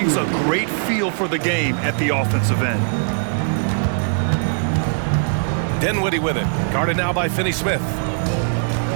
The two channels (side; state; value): left; silent; digital silence